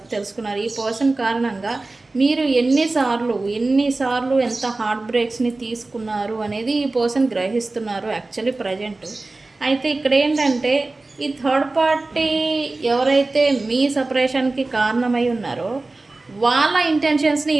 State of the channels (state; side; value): quieter; left; 3.2 dB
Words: తెలుసుకున్నారు. ఈ పర్సన్ కారణంగా మీరు ఎన్నిసార్లు ఎంత హార్ట్ బ్రేక్స్ని తీసుకున్నారు అనేది ఈ పర్సన్ గ్రహిస్తున్నారు యాక్చువల్లీ ప్రజెంట్. అయితే ఇక్కడ ఏంటంటే ఈ థర్డ్ పార్టీ ఎవరైతే మీ సపరేషన్కి కారణమై ఉన్నారో వాళ్ళ ఇంటెన్షన్స్ని